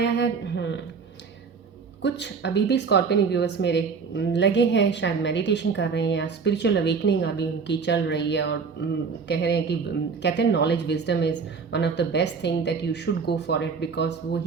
है। कुछ अभी भी स्कॉर्पियन व्यूअर्स मेरे लगे हैं, शायद मेडिटेशन कर रहे हैं, स्पिरिचुअल अवेकनिंग अभी उनकी चल रही है और कह रहे हैं कि कहते हैं knowledge wisdom is one of the best thing that you should go for it, because वो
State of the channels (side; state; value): left; quieter; 5.4 dB